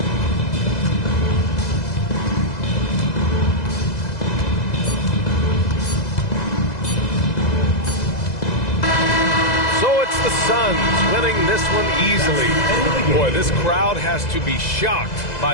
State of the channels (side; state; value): right; late; 2.0 ms